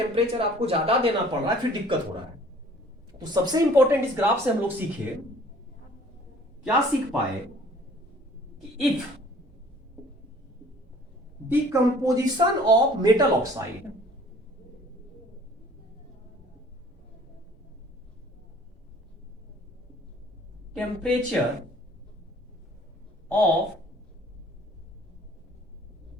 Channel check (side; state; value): both; normal; correlation 0.53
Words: आपको ज्यादा देना पड़ रहा है, फिर दिक्कत हो रहा है। तो सबसे इंपॉर्टेंट इस ग्राफ से हम लोग सीखे, क्या सीख पाए कि if decomposition of metal oxide temperature of